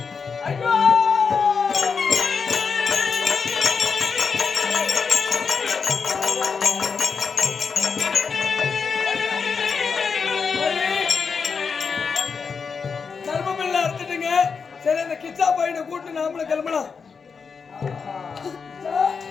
சரி, அந்த கிச்சா பையனை கூட்டு நாமள கிளம்பலாம்.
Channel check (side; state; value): right; quieter; 5.6 dB